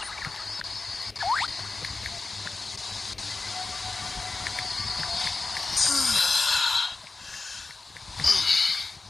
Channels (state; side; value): quieter; right; 3.7 dB